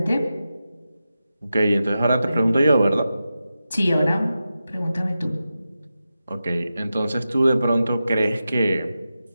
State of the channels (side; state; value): both; inverted; correlation -0.91